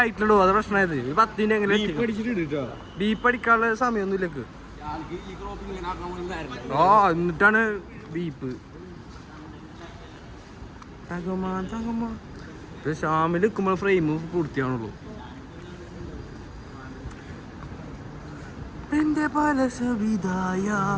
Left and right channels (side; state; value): both; identical; correlation 1.00